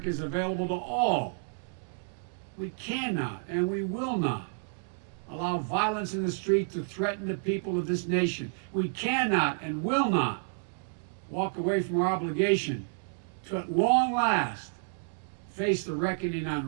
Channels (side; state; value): left; silent; digital silence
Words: is available to all. We cannot and we will not allow violence in the street to threaten the people of this nation. We cannot and will not walk away from our obligation to, at long last, face the reckoning on